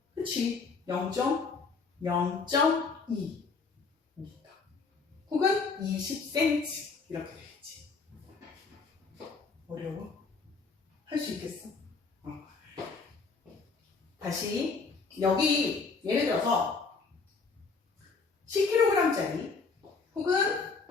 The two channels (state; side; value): quieter; right; 4.6 dB